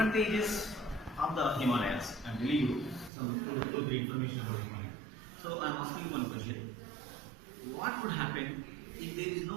of the Himalayas. I'm telling you some two, three information about Himalayas. So I'm asking you one question: what would happen if there is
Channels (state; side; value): drops out; left; at 3.1 s